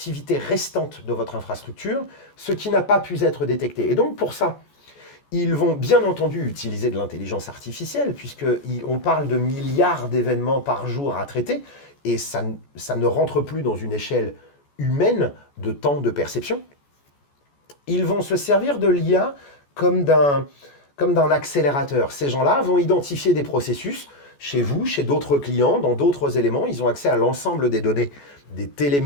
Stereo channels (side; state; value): right; late; 14 ms